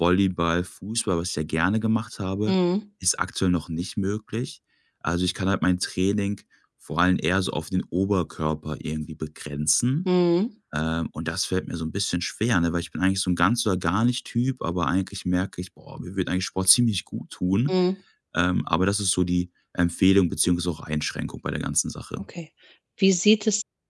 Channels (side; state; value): both; identical; correlation 1.00